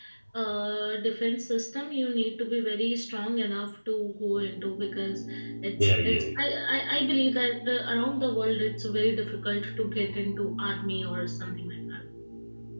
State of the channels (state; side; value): inverted; both; correlation -1.00